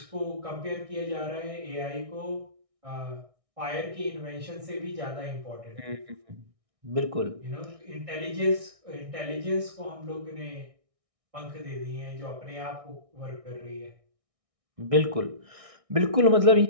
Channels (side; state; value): left; late; 1.6 ms